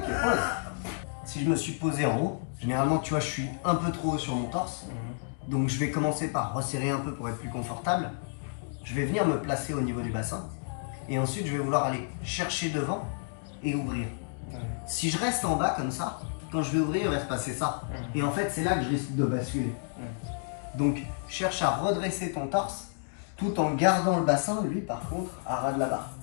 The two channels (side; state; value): right; silent; digital silence